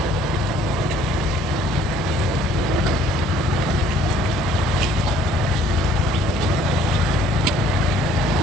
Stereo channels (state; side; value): normal; both; correlation 0.58